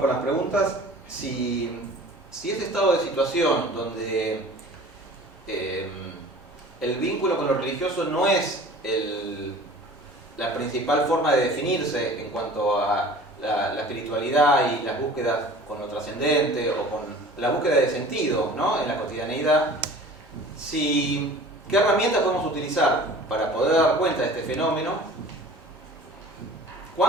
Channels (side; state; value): both; normal; correlation 0.43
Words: con las preguntas. Si ese estado de situación donde el vínculo con lo religioso no es la principal forma de definirse en cuanto a la espiritualidad y las búsquedas con lo trascendente o con la búsqueda de sentido, ¿no? En la cotidianeidad, ¿qué herramientas podemos utilizar para poder dar cuenta de este fenómeno?